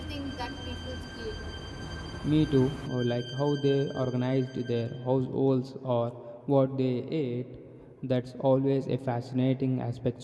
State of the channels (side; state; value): both; identical; correlation 1.00